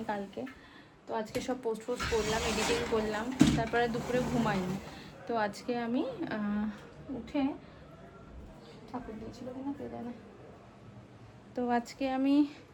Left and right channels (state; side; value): identical; both; correlation 1.00